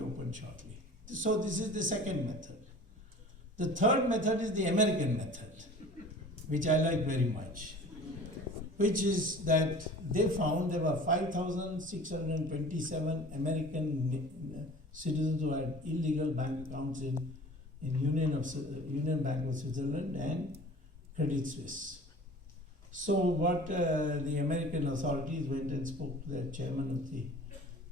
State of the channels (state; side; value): normal; both; correlation 0.43